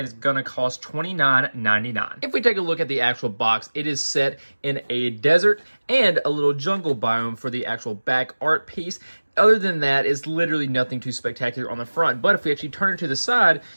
going to cost $29.99. If we take a look at the actual box, it is set in a desert and a little jungle biome for the actual back art piece. Other than that, it's literally nothing too spectacular on the front, but if we actually turn it to the side,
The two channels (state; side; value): inverted; both; correlation -1.00